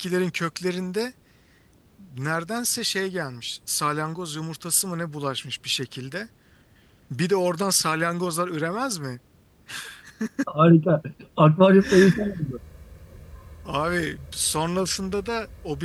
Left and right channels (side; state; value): both; identical; correlation 1.00